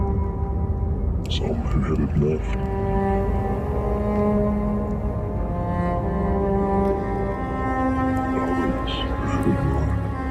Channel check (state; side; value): identical; both; correlation 1.00